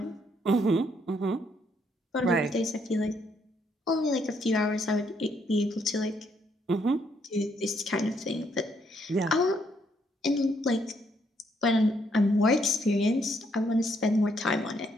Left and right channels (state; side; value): normal; both; correlation 0.72